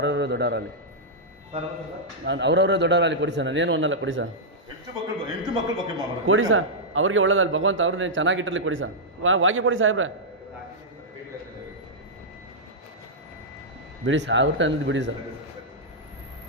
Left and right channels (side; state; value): both; normal; correlation -0.09